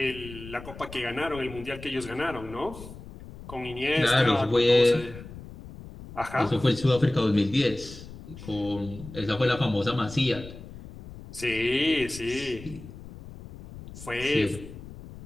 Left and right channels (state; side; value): noise; left; rumble, 15 dB below the sound